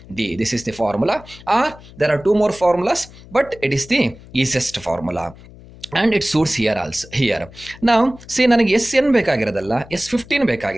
d. This is the formula. Or there are two more formulas, but it is the easiest formula. And it suits here also. Here now see ನನಗೆ SN ಬೇಕಾಗಿರೋದಲ್ಲ, S15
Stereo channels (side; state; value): left; noise; hum, 20 dB below the sound